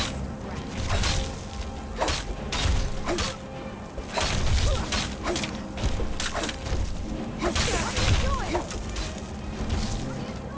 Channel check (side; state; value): both; identical; correlation 1.00